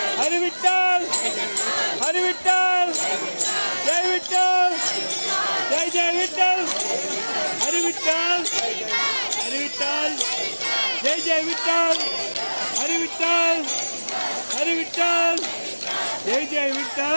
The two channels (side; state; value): both; inverted; correlation -1.00